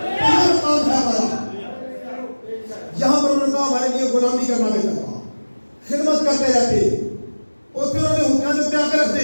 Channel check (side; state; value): both; inverted; correlation -1.00